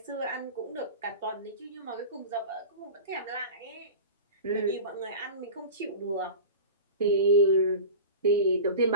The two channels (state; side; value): inverted; both; correlation -0.32